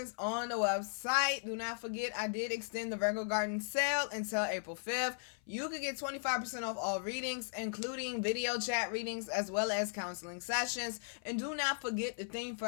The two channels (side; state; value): right; silent; 53 dB below the other